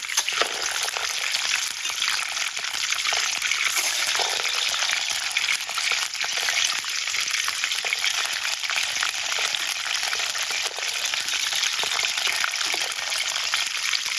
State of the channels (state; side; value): identical; both; correlation 1.00